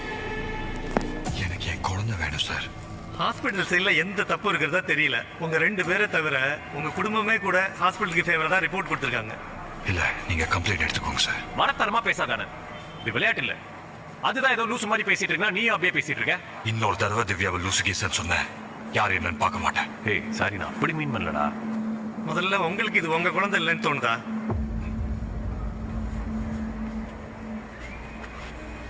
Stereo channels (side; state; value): both; identical; correlation 1.00